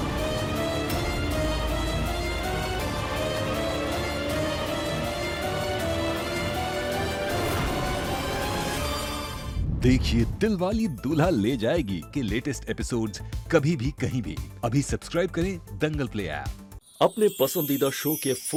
देखिए दिलवाली दूल्हा ले जाएगी के लेटेस्ट एपिसोड्स कभी भी कहीं भी। अभी सब्सक्राइब करें दंगल प्ले ऐप। अपने पसंदीदा शो के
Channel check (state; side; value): identical; both; correlation 1.00